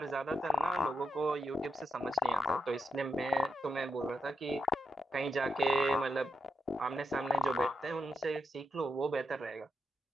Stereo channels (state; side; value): normal; both; correlation 0.82